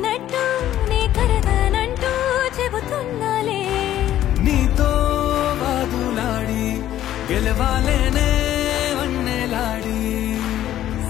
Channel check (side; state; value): right; quieter; 12.5 dB